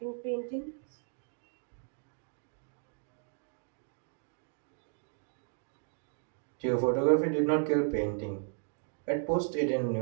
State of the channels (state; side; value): silent; left; digital silence